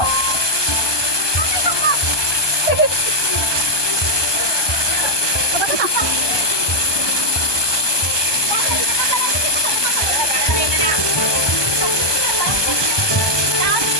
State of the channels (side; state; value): right; late; 1.2 ms